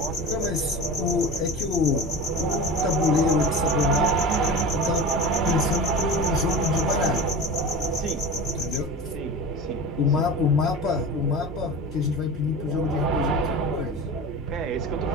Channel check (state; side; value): normal; both; correlation 0.31